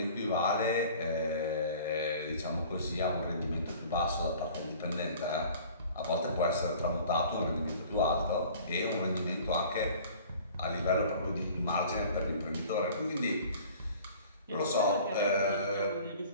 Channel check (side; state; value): both; inverted; correlation -0.47